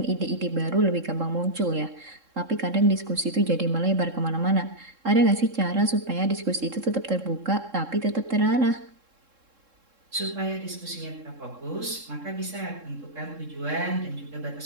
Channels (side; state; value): left; late; 3.7 ms